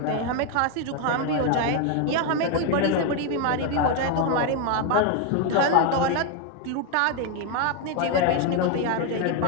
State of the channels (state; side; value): different; both; correlation 0.01